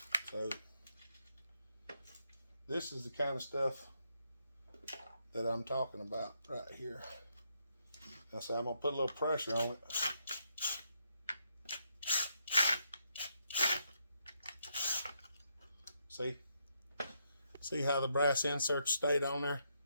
So this is the kind of stuff that I'm talking about right here. Now, so I'm going to put a little pressure on it. See how the brass insert stayed on there?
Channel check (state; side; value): inverted; both; correlation -0.78